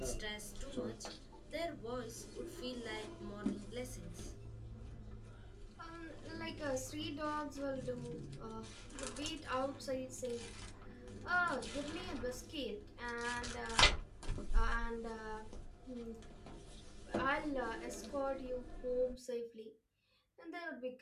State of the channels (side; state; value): both; identical; correlation 1.00